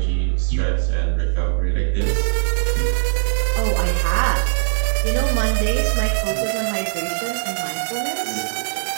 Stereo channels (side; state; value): left; silent; digital silence